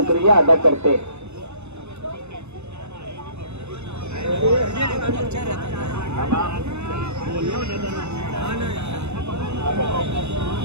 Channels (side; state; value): left; late; 0.81 ms